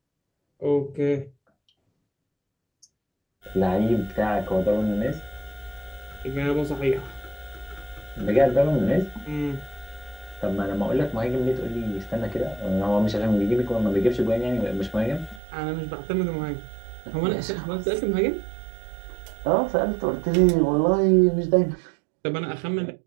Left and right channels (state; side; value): drops out; left; at 15.4 s